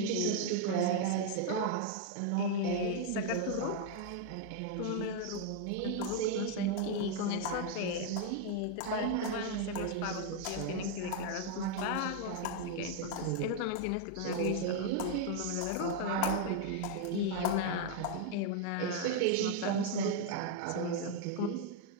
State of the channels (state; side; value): different; both; correlation 0.00